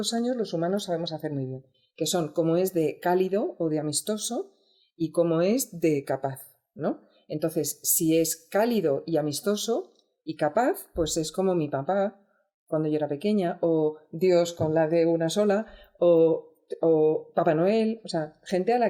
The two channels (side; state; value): both; identical; correlation 1.00